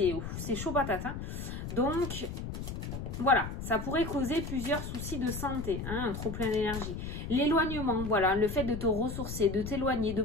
chaud patate. Hein. Donc, voilà, ça pourrait causer plusieurs soucis de santé, hein, un trop plein d'énergie. L'éloignement, voilà, le fait de te ressourcer, de t'éloigner, de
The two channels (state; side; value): noise; left; rumble, 6 dB below the sound